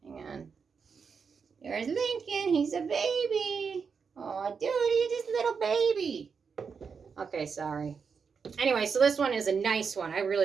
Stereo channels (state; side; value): quieter; left; 5.8 dB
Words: Hang on. There's Lincoln. He's a baby. Oh, dude, he's just a little baby. Okay, sorry. Anyway, so this one is a nice one. I